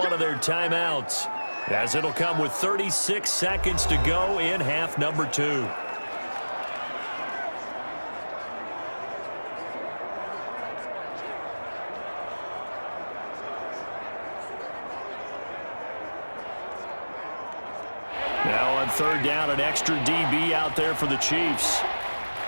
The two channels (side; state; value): both; inverted; correlation -1.00